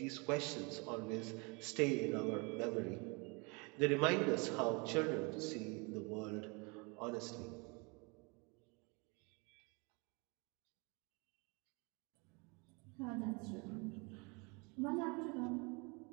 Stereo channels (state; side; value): quieter; left; 30.1 dB